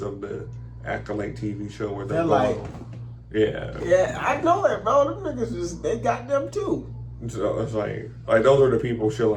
of the Acolyte TV show where they're Yeah, I know that, bro. Them niggas they got them too. So it's those are the people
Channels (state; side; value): identical; both; correlation 1.00